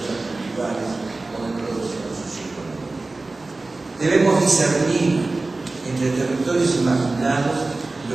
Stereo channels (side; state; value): left; quieter; 3.3 dB